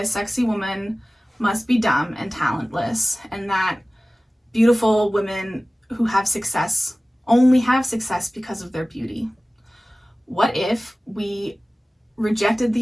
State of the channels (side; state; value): both; normal; correlation 0.97